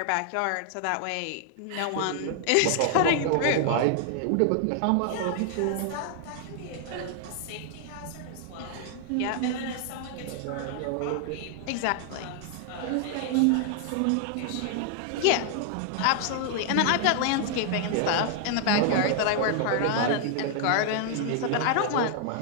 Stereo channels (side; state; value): both; different; correlation 0.00